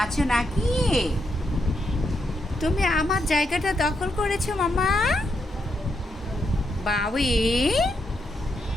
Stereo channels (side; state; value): both; normal; correlation 0.81